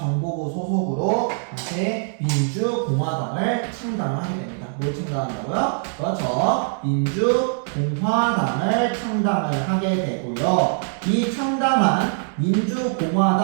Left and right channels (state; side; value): silent; left; digital silence